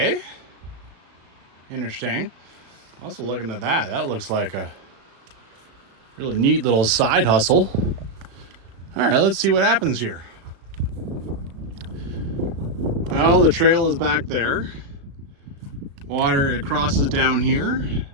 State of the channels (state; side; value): late; left; 35 ms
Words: Interesting. Also looking at that. That looks like a really neat little side hustle. All right, let's see what happens here. Well, the trail is back there. Water, it crosses down here.